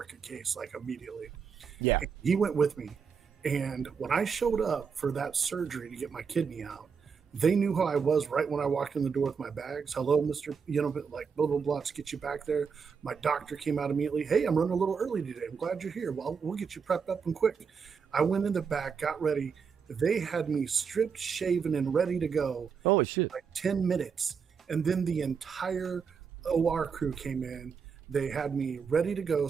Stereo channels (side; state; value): left; quieter; 6.1 dB